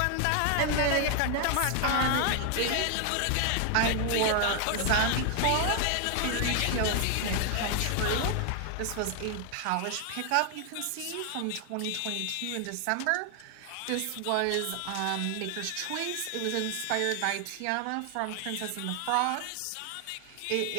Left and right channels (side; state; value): both; different; correlation 0.00